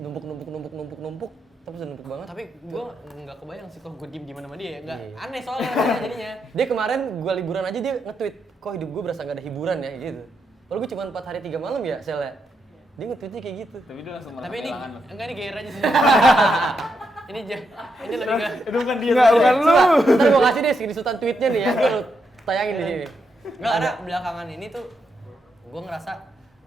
tapi udah numpuk banget. Tapi gue nggak kebayang sih kalau gue diem sama dia ya. Nggak Iya. aneh soalnya rasanya jadinya. Dia kemarin gue liburan aja dia nge-tweet, kok hidup gue berasa gak ada hiburan ya gitu. Kalau gue cuma 4 hari 3 malam ya selnya. Dia nge-tweetnya kayak gitu. Tapi dia langsung merasa Tapi ini kehilangan lo. enggak ini gair aja sih. ini lebih ke Itu bukan dia. Enggak, bukan lu. Ntar gue kasih deh screenshotan tweetnya nih ya, gue tayangin di sini. nggak ada belakangan ini tuh gue ngerasa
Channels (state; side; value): normal; both; correlation 0.82